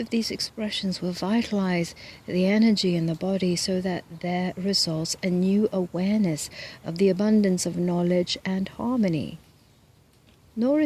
these expressions will vitalize the energy in the body so that there results a new awareness of the abundance of knowledge and harmony. Nor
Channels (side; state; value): both; identical; correlation 1.00